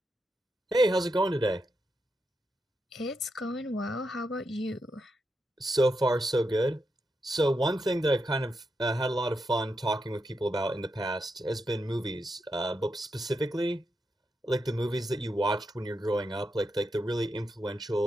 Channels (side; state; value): both; normal; correlation 0.85